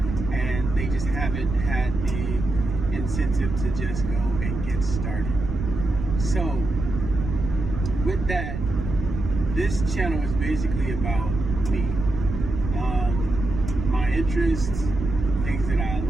and they just haven't had the incentive to just go and get started. So with that, this channel is basically about me, my interests, things that I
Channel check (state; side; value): noise; right; rumble, 5 dB below the sound